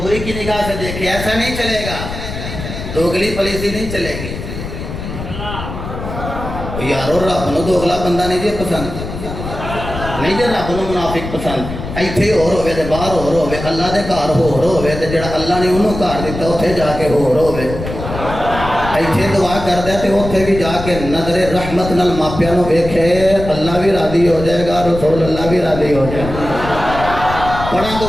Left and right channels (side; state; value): left; noise; rumble, 8 dB below the sound